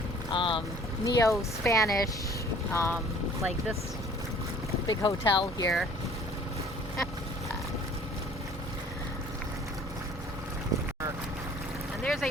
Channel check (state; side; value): normal; both; correlation 0.52